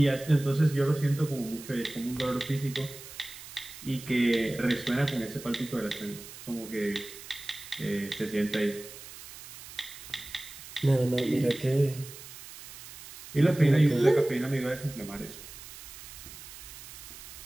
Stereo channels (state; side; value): noise; right; hiss, 15 dB below the sound